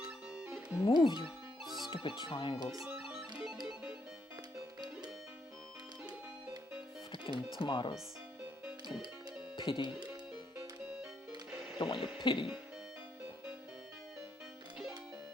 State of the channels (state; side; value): normal; both; correlation 0.76